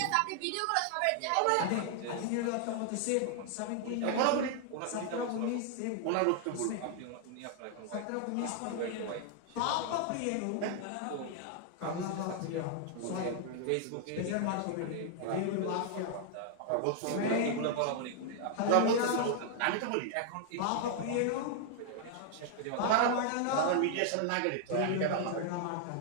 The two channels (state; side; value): different; both; correlation 0.00